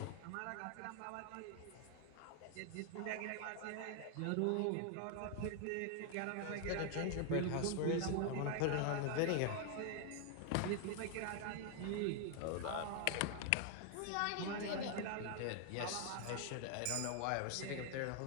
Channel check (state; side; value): different; both; correlation 0.00